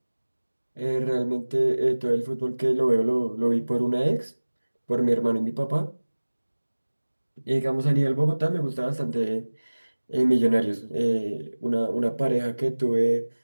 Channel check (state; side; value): inverted; both; correlation -1.00